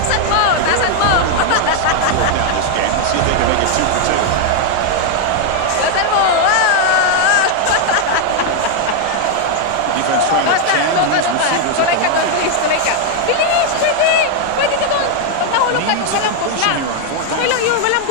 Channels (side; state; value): both; different; correlation 0.00